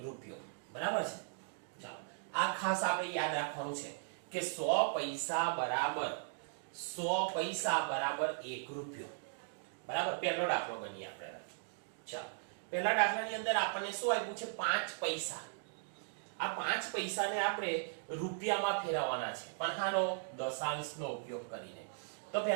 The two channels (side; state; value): left; silent; digital silence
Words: બરાબર છે। ચાલો આ ખાસ આપણે યાદ રાખવાનું છે કે 100 પૈસા બરાબર 1 રૂપિયો, બરાબર। પહેલો દાખલો ગણીએ આપણે, ચાલો પહેલા દાખલાની અંદર આપણને શું આપ્યું છે? 5 પૈસા। આ 5 પૈસાને આપણે રૂપિયામાં ફેરવવાના છે, પણ આનો દશાંશનો ઉપયોગ કરીને। તો